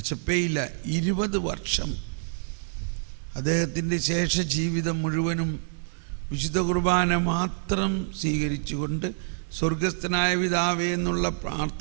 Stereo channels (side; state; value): left; silent; digital silence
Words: 20 വർഷം അദ്ദേഹത്തിൻ്റെ ശേഷ ജീവിതം മുഴുവനും വിശുദ്ധ കുർബാന മാത്രം സ്വീകരിച്ചുകൊണ്ട് സ്വർഗസ്ഥനായ പിതാവേ എന്നുള്ള